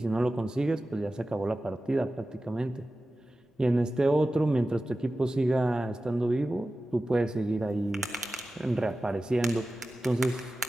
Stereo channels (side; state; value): both; normal; correlation 0.95